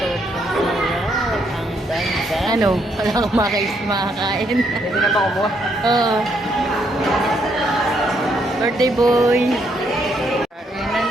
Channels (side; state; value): both; normal; correlation 0.73